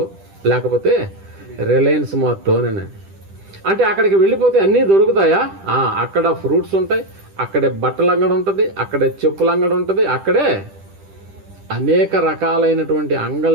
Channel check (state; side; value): late; left; 10 ms